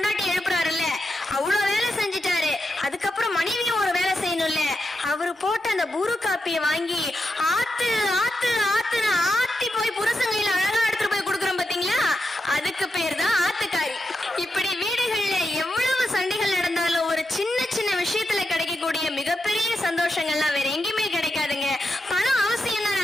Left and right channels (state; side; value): normal; both; correlation 0.87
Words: எழுப்புறாருல்ல, அவ்வளவு வேலை செஞ்சுட்டாரு. அதுக்கப்புறம் மனைவியும் ஒரு வேலை செய்யணும்ல. அவரு போட்ட அந்த புரு காப்பியை வாங்கி ஆத்து ஆத்து ஆத்துன்னு ஆத்தி போய் புருஷங்கையில அழகா எடுத்துட்டு போய் கொடுக்குறோம் பாத்தீங்களா, அதுக்கு பேர் தான் ஆத்துக்காரி. இப்படி வீடுகள்ல எவ்வளவு சண்டைகள் நடந்தாலும் ஒரு சின்ன சின்ன விஷயத்துல கிடைக்கக்கூடிய மிகப்பெரிய சந்தோஷங்கள்லாம் வேற எங்கேயுமே கிடைக்காதுங்க. பணம் அவசியம் தான்,